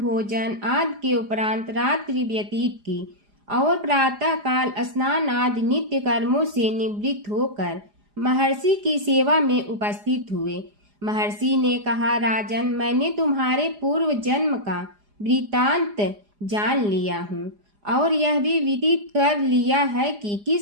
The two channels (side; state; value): left; late; 4.9 ms